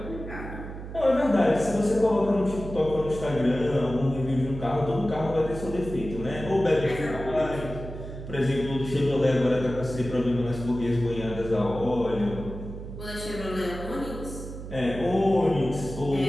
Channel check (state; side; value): noise; right; hum, 10 dB below the sound